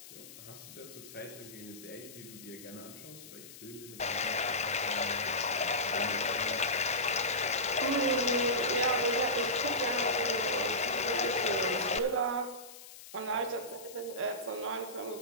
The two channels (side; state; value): left; noise; hiss, 16 dB below the sound